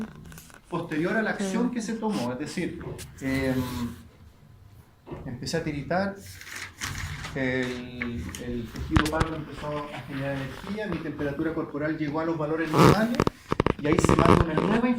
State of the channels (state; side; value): identical; both; correlation 1.00